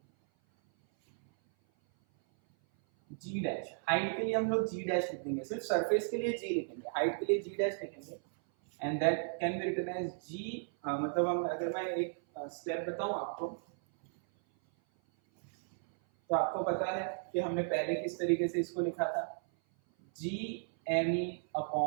जी डैश, हाइट के लिए हम लोग जी डैश लिखेंगे, सिर्फ सरफेस के लिए जी लिखेंगे, हाइट के लिए जी डैश लिखेंगे, and that can be written as g. मतलब हम अगर मैं एक स्टेप बताऊं आपको, तो आपको पता है कि हमने पहले किस तरीके से इसको लिखा था, g M E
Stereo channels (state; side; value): silent; left; 55 dB below the other